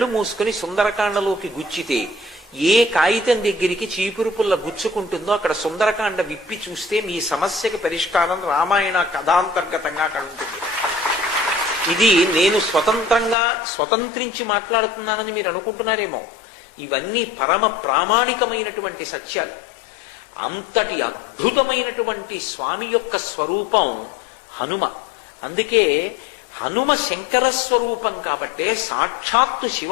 మూసుకుని సుందరకాండలోకి గుచ్చితే ఏ కాగితం దగ్గరికి చీపురు పుల్ల గుచ్చుకుంటుందో అక్కడ సుందరకాండ విప్పి చూస్తే మీ సమస్యకి పరిష్కారం రామాయణ కథాంతర్గతంగా అక్కడ ఉంటుంది. ఇది నేను స్వతంత్రించి మాట్లాడుతున్నానని మీరు అనుకుంటున్నారేమో. ఇవన్నీ పరమ ప్రామాణికమైనటువంటి సత్యాలు. అంతటి అద్భుతమైనటువంటి స్వామి యొక్క స్వరూపం హనుమ. అందుకే హనుమ శంకర స్వరూపం కాబట్టే, సాక్షాత్తు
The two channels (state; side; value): drops out; right; at 13.4 s